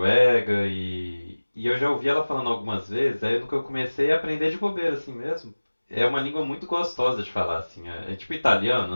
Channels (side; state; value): both; inverted; correlation -1.00